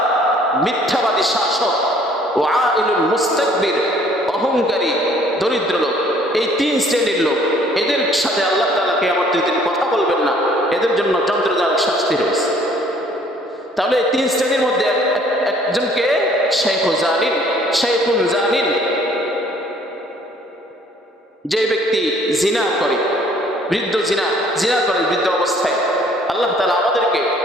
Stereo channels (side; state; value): both; normal; correlation 0.58